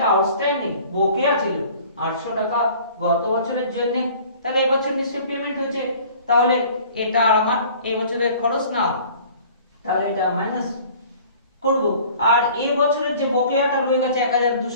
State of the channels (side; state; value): both; inverted; correlation -0.49